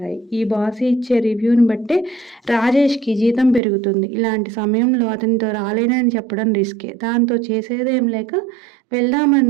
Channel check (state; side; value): drops out; left; at 3.6 s